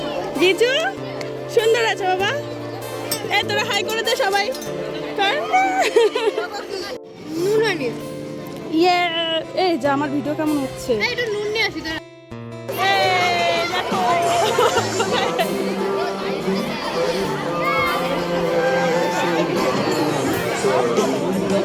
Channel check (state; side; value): identical; both; correlation 1.00